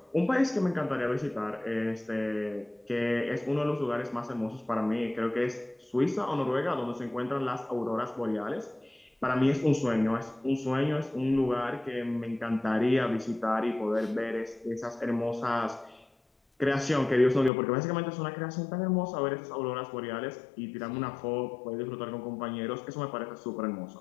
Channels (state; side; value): drops out; right; at 17.5 s